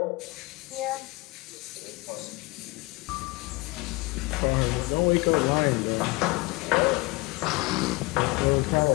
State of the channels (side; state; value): right; quieter; 23.8 dB